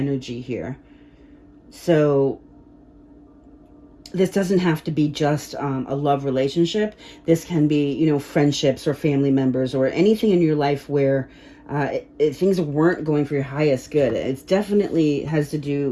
here. So this doesn't have to be just a love relationship. This can be, friendships or family members or anything in your life where things weren't going for your highest good. It definitely has to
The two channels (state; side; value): identical; both; correlation 1.00